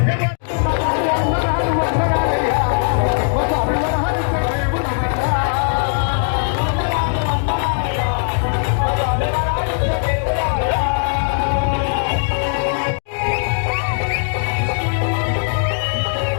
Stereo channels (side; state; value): right; silent; digital silence